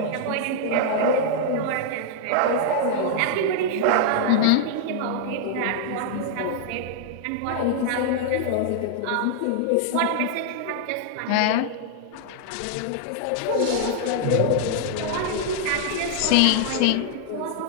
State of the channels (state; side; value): different; both; correlation -0.01